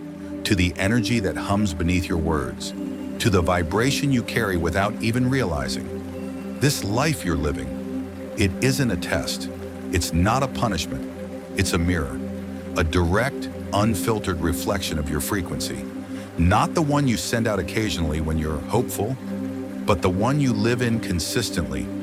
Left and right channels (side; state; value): both; identical; correlation 1.00